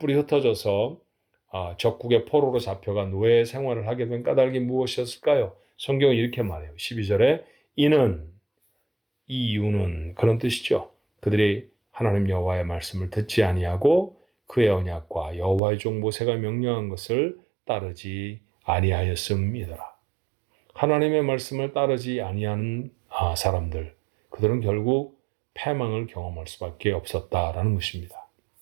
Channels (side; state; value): left; drops out; at 15.6 s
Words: 흩어져서 적국의 포로로 잡혀가 노예 생활을 하게 된 까닭이 무엇이었을까요? 성경은 이렇게 말해요. 12절에 이 이유는 그런 뜻이죠. 그들이 하나님 여호와의 말씀을 듣지 아니하고 그의 언약과 여호와의 종 모세가 명령한 것을 따르지 아니하였음이더라. 하나님의 말씀을 따르지 아니하는 사람들, 그들은 결국 패망을 경험할 수밖에 없었다라는 것입니다.